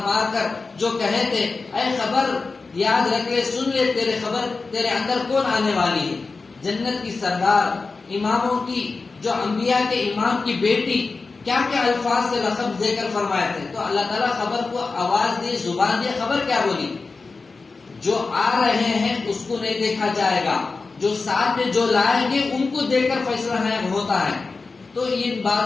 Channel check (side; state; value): right; quieter; 4.1 dB